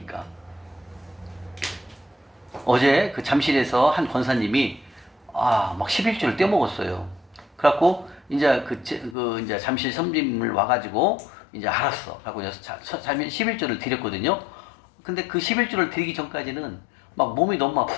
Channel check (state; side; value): drops out; right; at 9.2 s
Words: 어제 그 잠실에서 한 권사님이 막 11조를 떼먹었어요. 그래갖고 이제 이제 잠실 섬김을 와가지고 이제 알았어. 하고 이제 살면 11조를 드렸거든요. 근데 그 11조를 드리기 전까지는 막 몸이 너무